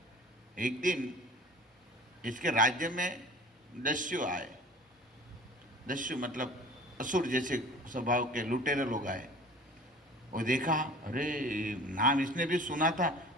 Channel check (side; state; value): both; normal; correlation 0.43